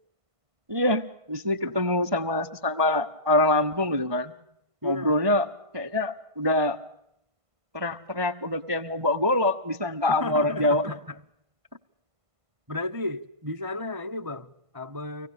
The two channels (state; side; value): late; left; 1.5 ms